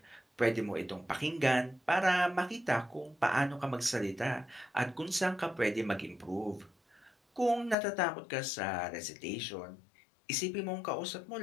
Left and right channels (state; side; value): drops out; right; at 7.8 s